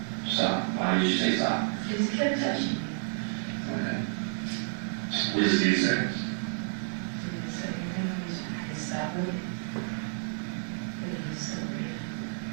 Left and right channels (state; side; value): silent; left; 58 dB below the other